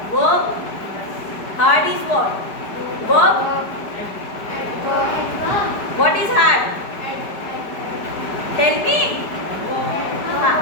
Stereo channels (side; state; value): right; late; 5.0 ms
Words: Verb. Hard is what? Verb. What is hard? Tell me.